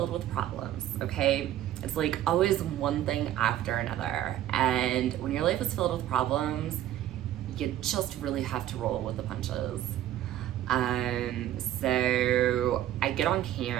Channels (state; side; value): quieter; left; 12.5 dB